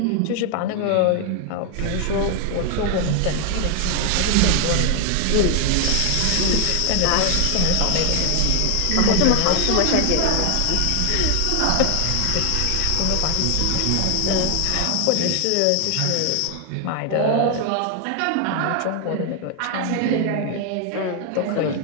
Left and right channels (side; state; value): both; different; correlation 0.00